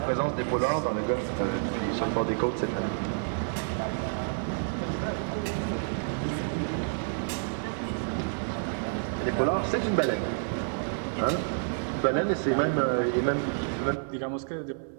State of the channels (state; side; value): silent; left; 58 dB below the other